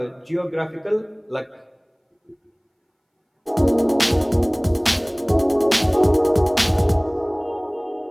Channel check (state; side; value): identical; both; correlation 1.00